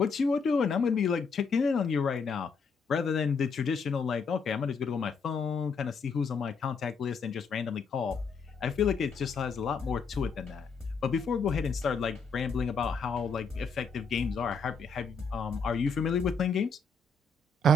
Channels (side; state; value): right; quieter; 4.2 dB